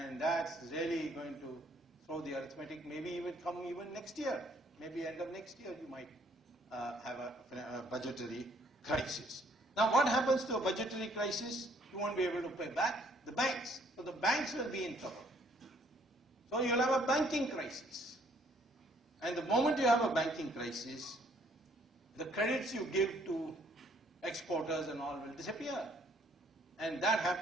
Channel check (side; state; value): both; normal; correlation 0.64